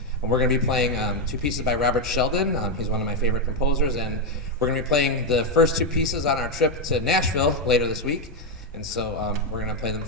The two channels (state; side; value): normal; both; correlation 0.04